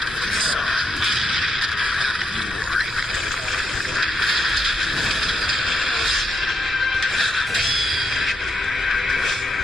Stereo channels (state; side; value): normal; both; correlation 0.80